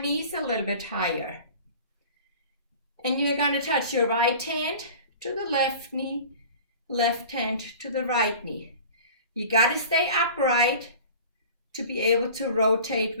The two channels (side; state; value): both; inverted; correlation -0.42